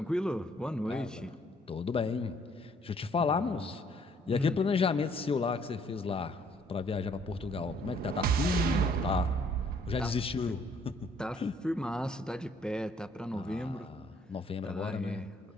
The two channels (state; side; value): normal; both; correlation 0.63